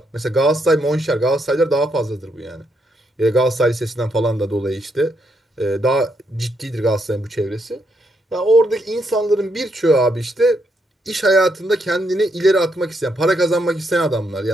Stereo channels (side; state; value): both; normal; correlation 0.77